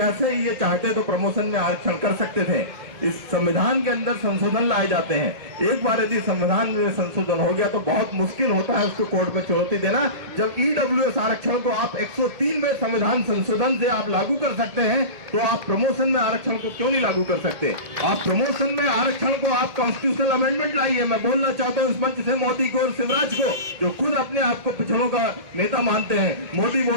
ये चाहते तो प्रमोशन में आरक्षण कर सकते थे। इस संविधान के अंदर संशोधन लाए जाते हैं। एक बार यदि संविधान में संशोधन हो गया तो बहुत मुश्किल होता है उसको कोर्ट में चुनौती देना। जब ईडब्ल्यूएस आरक्षण को आप 103 में संविधान संशोधन से आप लागू कर सकते हैं तो आप प्रमोशन में आरक्षण को क्यों नहीं लागू कर सकते? आप प्रमोशन में आरक्षण को आप कॉन्स्टिट्यूशनल अमेंडमेंट लाइए। मैं बोलना चाहता हूँ इस मंच से मोदी को और शिवराज को, जो खुद अपने आप को पिछड़ों का नेता मानते हैं। मोदी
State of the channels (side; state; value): left; late; 1.8 ms